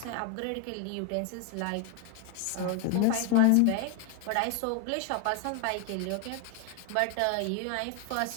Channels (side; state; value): both; different; correlation 0.01